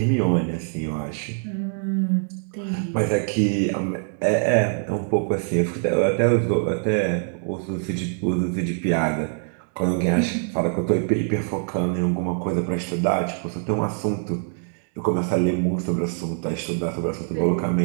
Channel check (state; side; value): silent; left; 55 dB below the other